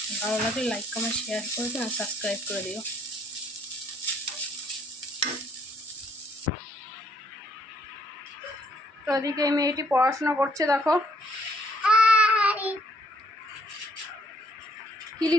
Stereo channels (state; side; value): normal; both; correlation 0.68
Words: ভালো লাগলে লাইক কমেন্ট শেয়ার করে দিও আর সাবস্ক্রাইব করে দিও। তো এদিকে এই মেয়েটি পড়াশোনা করছে, দেখো কি